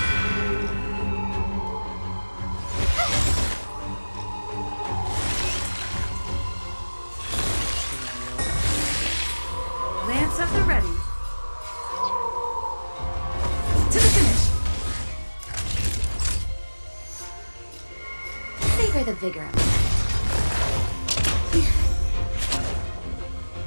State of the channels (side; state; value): both; inverted; correlation -1.00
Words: Lance at the ready. To the finish. Savor the vigor of it.